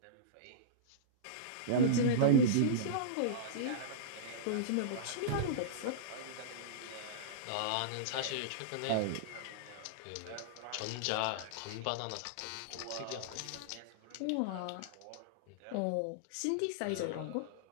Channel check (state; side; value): different; both; correlation -0.03